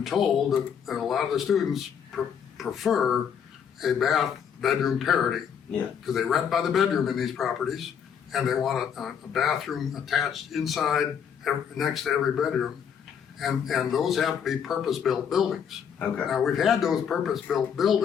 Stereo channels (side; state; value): right; quieter; 7.8 dB